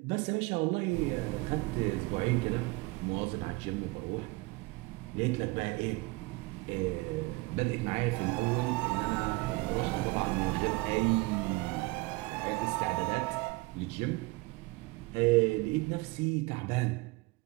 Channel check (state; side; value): quieter; left; 23.6 dB